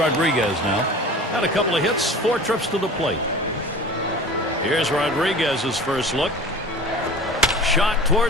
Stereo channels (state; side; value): normal; both; correlation 0.39